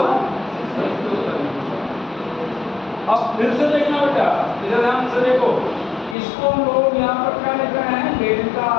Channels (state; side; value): drops out; right; at 6.2 s